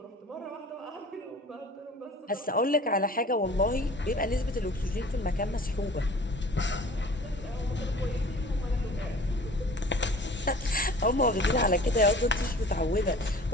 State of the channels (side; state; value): both; normal; correlation 0.45